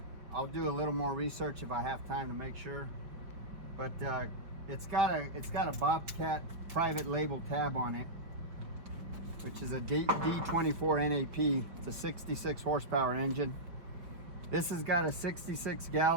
do a little more research if I have time to make sure. But it's got a Bobcat private label tab on it, which is a D24 NAP. It's a 66 horsepower engine. This has got a 66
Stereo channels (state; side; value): late; left; 5.1 ms